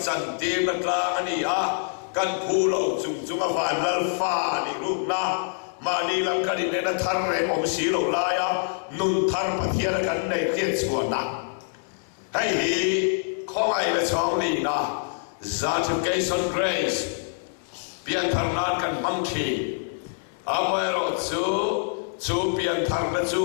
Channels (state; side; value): silent; right; 61 dB below the other